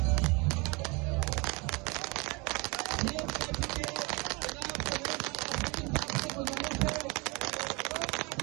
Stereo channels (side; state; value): left; quieter; 27.9 dB